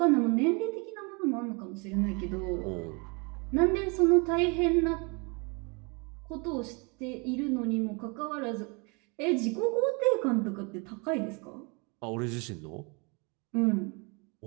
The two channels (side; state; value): left; quieter; 31.4 dB